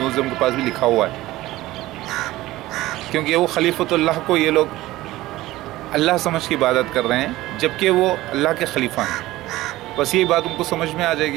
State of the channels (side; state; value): left; quieter; 17.2 dB